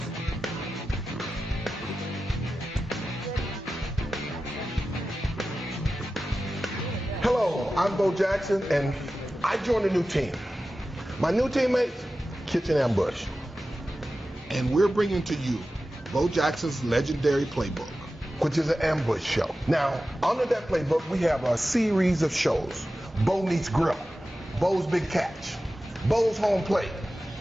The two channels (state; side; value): normal; both; correlation 0.94